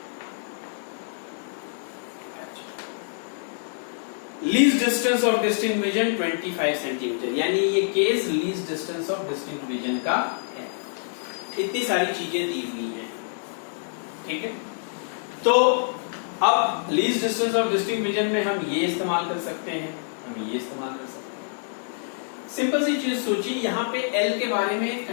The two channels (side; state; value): right; silent; digital silence